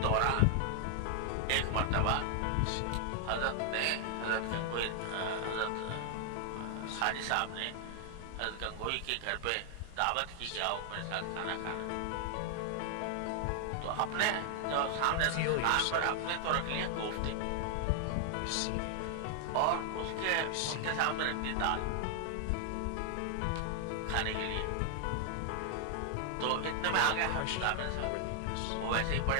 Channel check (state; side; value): different; both; correlation 0.00